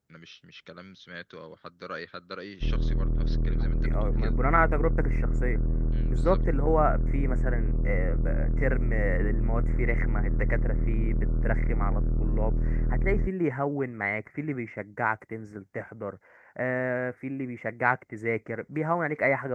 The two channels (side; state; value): both; identical; correlation 1.00